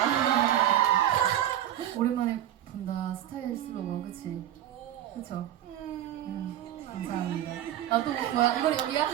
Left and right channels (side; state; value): left; quieter; 12.0 dB